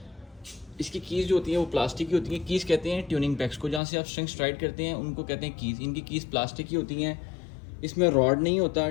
इसकी कीज़ जो होती हैं वो प्लास्टिक की होती हैं। कीज़ कहते हैं ट्यूनिंग पैक्स को, जहाँ से आप स्ट्रिंग्स टाइट करते हैं उनको कहते हैं कीज़। इनकी कीज़ प्लास्टिक की होती हैं। इसमें रॉड नहीं होता,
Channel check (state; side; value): drops out; right; at 3.8 s